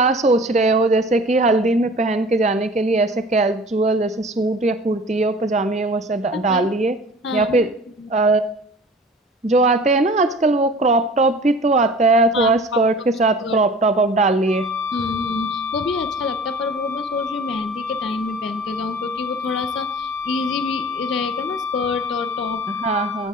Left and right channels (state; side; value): normal; both; correlation 0.44